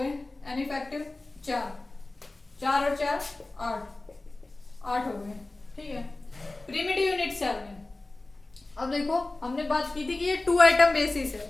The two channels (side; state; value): right; quieter; 3.0 dB